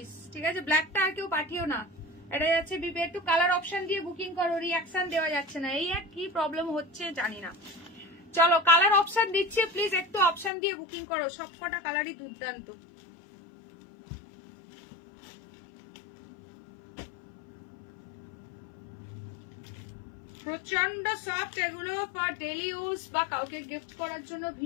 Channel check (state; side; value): drops out; right; at 10.5 s